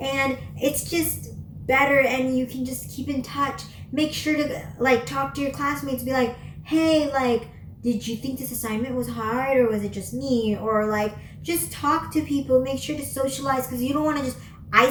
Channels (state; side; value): identical; both; correlation 1.00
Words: and it's just better, and you can just keep in touch. Make sure to like talk to your classmates, be like, hey, like, did you think this assignment was hard, or was it just me? Or like, just talk to people. Make sure to socialize, because you don't want to just